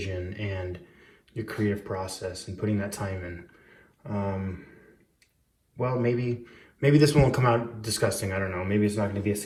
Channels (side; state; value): both; identical; correlation 1.00